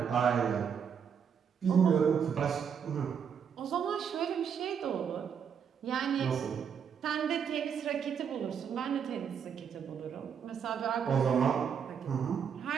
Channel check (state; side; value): quieter; left; 7.4 dB